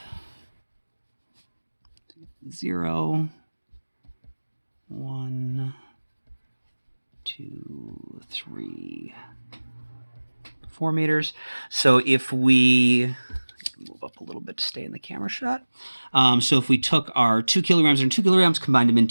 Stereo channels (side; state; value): both; inverted; correlation -1.00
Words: 0, 1, 2, 3, 4 meters. So if we move up a little bit to stay in the camera shot. So if we took our 2 kilograms and 2 kilograms, combined them